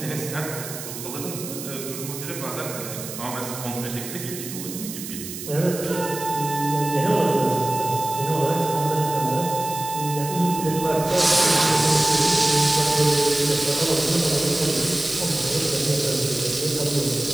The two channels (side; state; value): right; noise; hiss, 10 dB below the sound